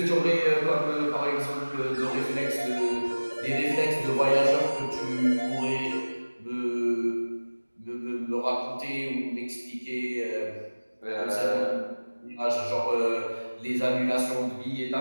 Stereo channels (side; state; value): both; inverted; correlation -1.00